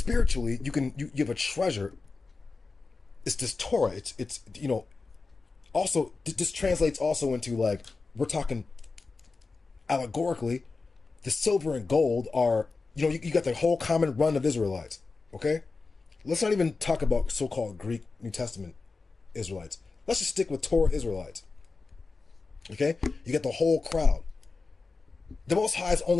you have a treasure. It's this Torah. It's you know, also this translates also into like, we're talking allegorically, the silver and gold are, you know, you got the whole common run of Israelites. Okay? Let's not even talk about so-called Greek New Testament Israelites. Let's just stick with Torah Israelites. Okay? You get the whole crowd. The Most High is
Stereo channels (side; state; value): right; quieter; 4.1 dB